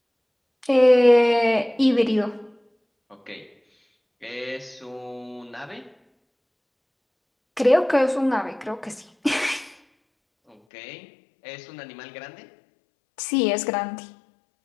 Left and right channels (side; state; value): right; drops out; at 10.6 s